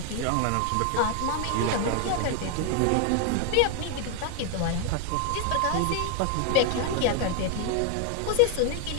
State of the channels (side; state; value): both; different; correlation 0.00